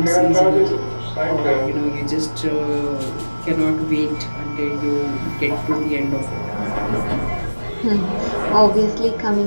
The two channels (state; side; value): inverted; both; correlation -1.00